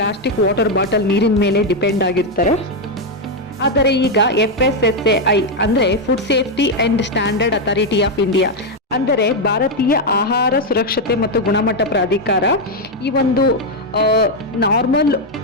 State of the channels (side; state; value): both; normal; correlation 0.03